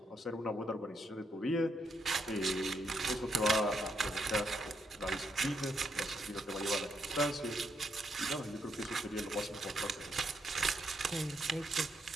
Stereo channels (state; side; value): normal; both; correlation 0.77